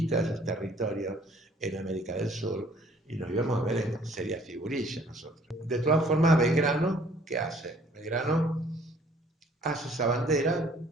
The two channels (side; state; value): both; normal; correlation 0.58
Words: de esos territorios en América del Sur, y nos íbamos a ver en seria figurilla nosotros. De todas formas, Belgrano, ¿qué hace? Belgrano hace esa bandera,